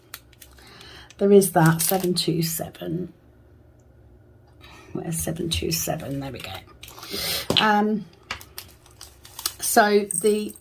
There is that 727. Where's 727? There we go. So the,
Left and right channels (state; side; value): identical; both; correlation 1.00